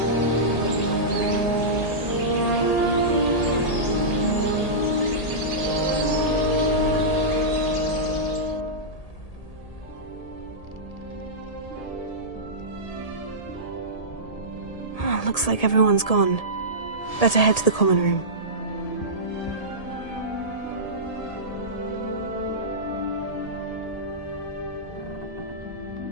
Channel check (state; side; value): late; right; 1.8 ms